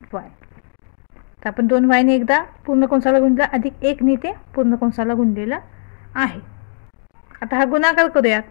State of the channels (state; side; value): silent; right; 62 dB below the other